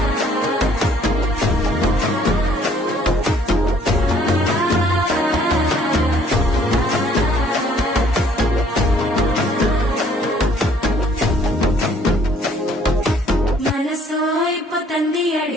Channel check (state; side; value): normal; both; correlation 0.61